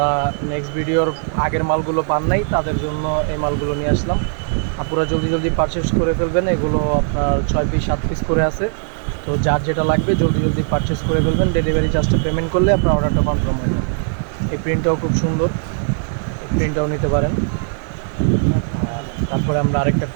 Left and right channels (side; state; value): left; silent; 67 dB below the other